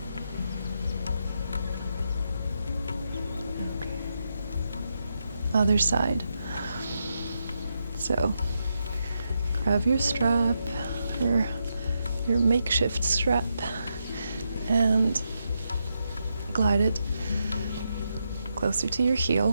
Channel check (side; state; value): both; inverted; correlation -0.84